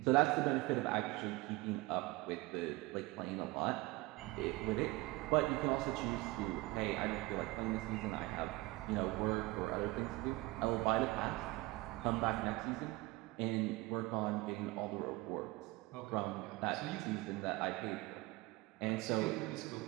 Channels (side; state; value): left; quieter; 21.1 dB